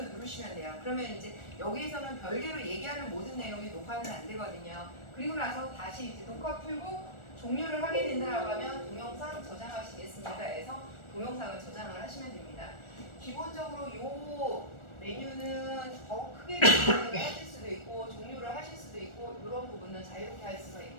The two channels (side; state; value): right; late; 1.4 ms